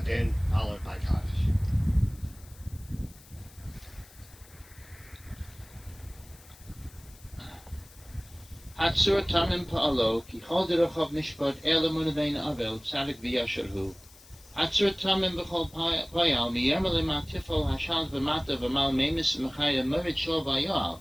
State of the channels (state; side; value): noise; left; hiss, 23 dB below the sound